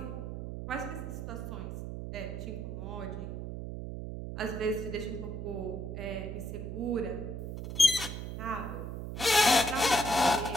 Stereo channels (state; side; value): noise; right; hum, 6 dB below the sound